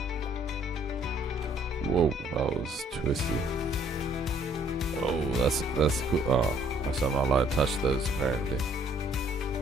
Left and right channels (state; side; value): normal; both; correlation 0.62